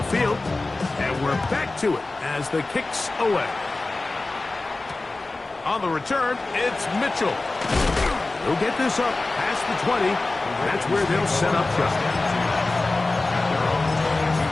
field, and we're back to it as the kick's away. On the return, it's Mitchell. He'll get this up past the 20. That's where they'll set up shop.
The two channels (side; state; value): right; quieter; 3.2 dB